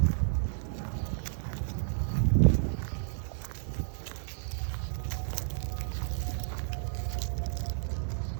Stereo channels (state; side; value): silent; left; digital silence